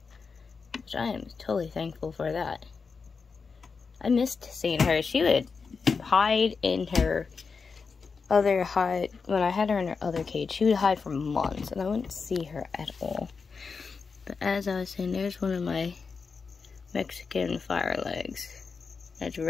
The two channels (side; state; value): right; quieter; 5.1 dB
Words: which I am totally thankful for that. I missed seeing her. She would hide in her other hide. When I had her in her other cage, she would hide for months, and I wouldn't see her at all. But as I was saying, there's one of my Mexican fire legs. That's